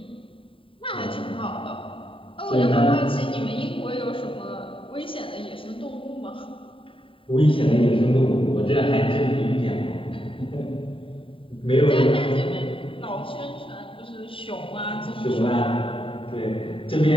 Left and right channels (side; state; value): right; late; 0.25 ms